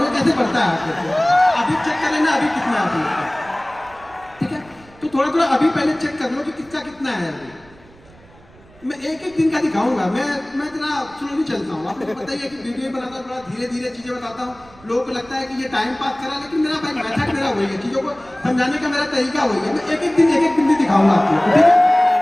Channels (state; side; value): noise; right; rumble, 25 dB below the sound